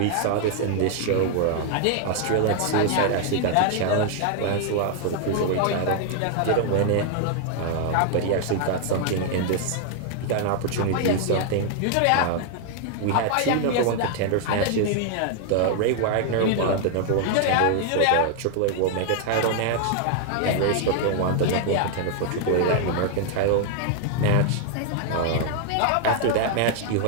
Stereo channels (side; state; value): both; different; correlation 0.00